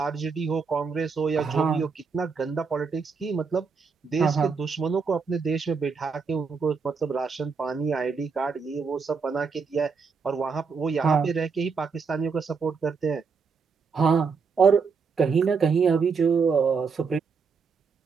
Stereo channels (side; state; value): left; quieter; 5.3 dB